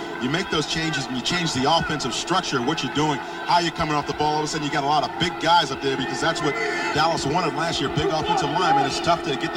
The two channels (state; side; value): identical; both; correlation 1.00